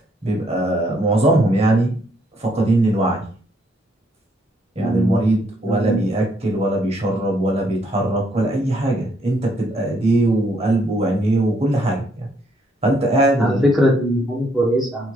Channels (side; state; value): both; normal; correlation 0.70